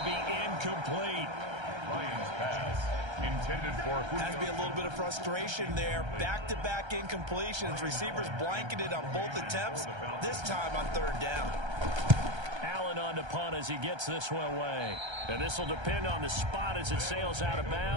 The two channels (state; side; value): late; left; 1.3 ms